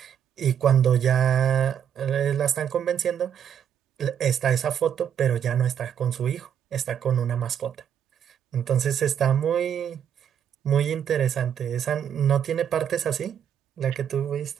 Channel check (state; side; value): quieter; left; 8.8 dB